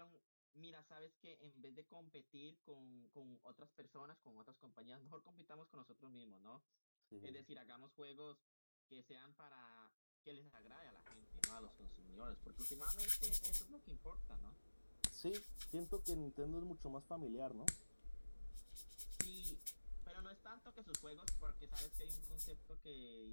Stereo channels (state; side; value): inverted; both; correlation -1.00